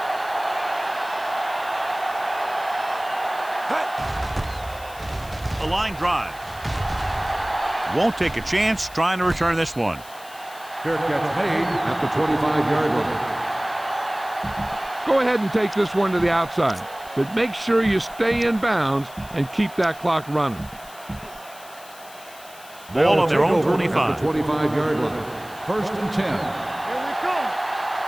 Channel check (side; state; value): left; noise; hiss, 20 dB below the sound